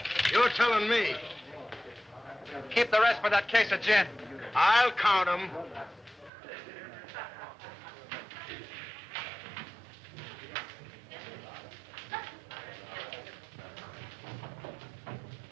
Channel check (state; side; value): drops out; left; at 6.3 s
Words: You're telling me. Keep the rest for that case of gin. I'll count them.